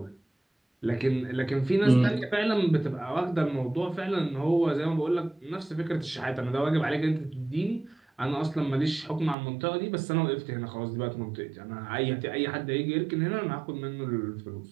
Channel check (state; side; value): drops out; left; at 9.3 s